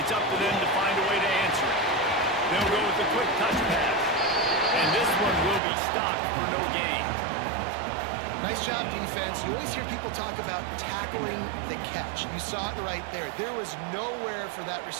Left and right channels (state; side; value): drops out; left; at 5.6 s